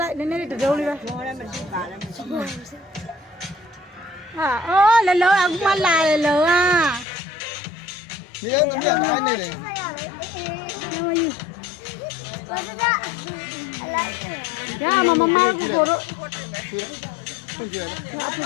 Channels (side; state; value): right; drops out; at 7.1 s